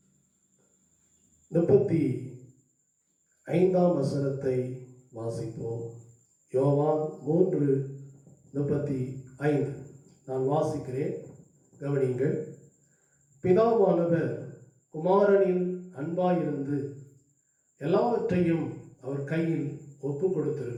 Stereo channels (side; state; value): both; identical; correlation 1.00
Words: 35ஆம் வசனத்தை வாசிப்போம். யோவான் 3:35 நான் வாசிக்கிறேன், கவனிங்கள். பிதாவானவர் குமாரனில் அன்பாயிருந்து எல்லாவற்றையும் அவர் கையில் ஒப்பு